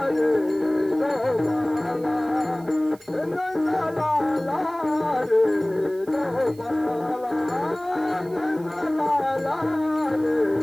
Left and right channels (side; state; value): right; noise; hiss, 26 dB below the sound